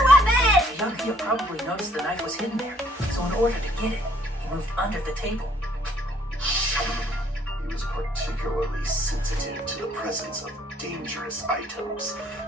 weapon! Byakuya probably noticed the knife was hidden there, so in order to get it, he moved under the table. He was particularly sensitive to the presence of dangerous items,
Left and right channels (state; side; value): normal; both; correlation 0.63